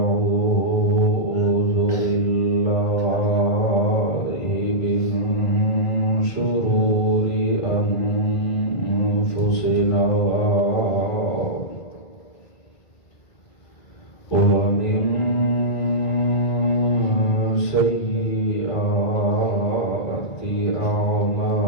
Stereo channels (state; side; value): late; right; 2.4 ms